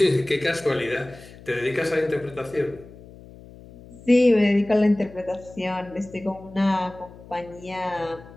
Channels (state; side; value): noise; left; hum, 20 dB below the sound